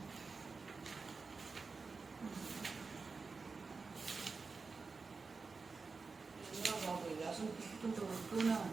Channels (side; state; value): left; quieter; 4.4 dB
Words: బాబు అసలు తిట్టుకుంటూ ఉంటూనే